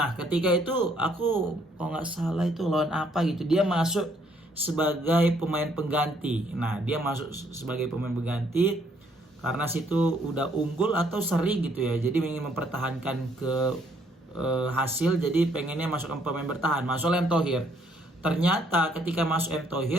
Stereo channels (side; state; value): both; normal; correlation 0.68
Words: ketika itu aku kalau nggak salah itu lawan apa gitu, dia masuk sebagai pemain pengganti. Nah, dia masuk sebagai pemain pengganti karena situ udah unggul atau seri gitu ya. Jadi ingin mempertahankan ke hasil, jadi pengennya masukkan pemain bertahan. Masuk M. Thohir. Ternyata ketika masuk M.